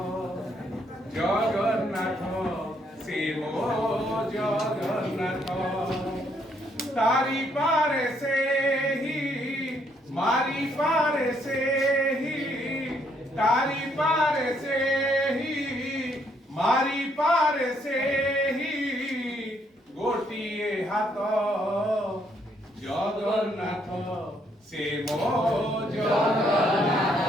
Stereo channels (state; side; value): normal; both; correlation 0.71